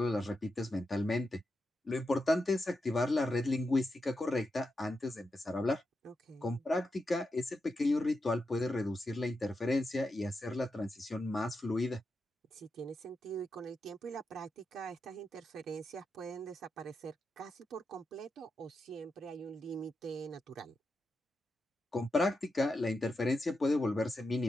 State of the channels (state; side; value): normal; both; correlation 0.87